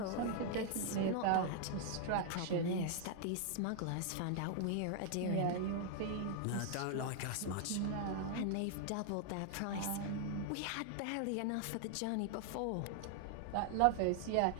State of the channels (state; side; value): different; both; correlation 0.00